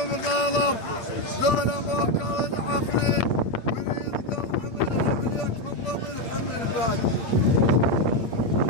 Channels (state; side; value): late; right; 8.7 ms